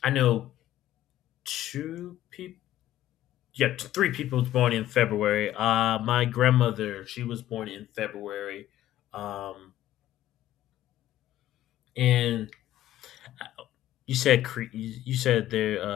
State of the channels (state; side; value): quieter; right; 13.5 dB